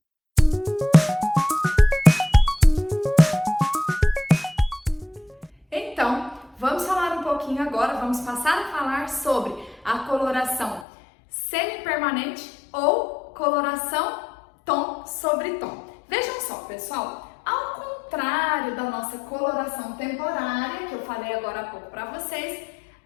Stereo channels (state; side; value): drops out; right; at 10.9 s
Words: Então, vamos falar um pouquinho agora, vamos passar a falar sobre a coloração semi-permanente ou coloração tom sobre tom. Vejam só, pessoal, ao contrário da nossa coloração temporária, que eu falei agora há pouco para vocês,